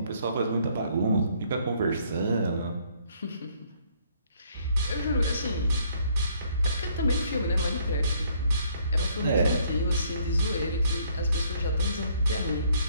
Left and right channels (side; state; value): both; inverted; correlation -0.65